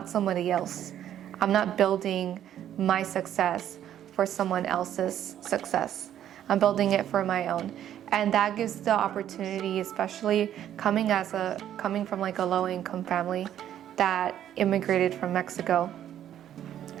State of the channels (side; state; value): left; quieter; 10.9 dB